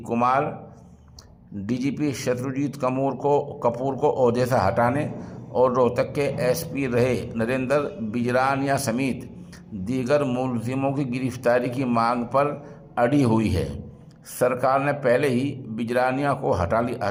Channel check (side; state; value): both; identical; correlation 1.00